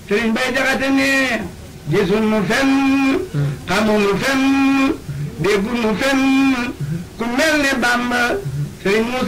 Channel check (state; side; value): identical; both; correlation 1.00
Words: sëñ Bay Jaxate ne gisul nu fenn xamul nu fenn déggu nu fenn ku mel ne Bamba sëñ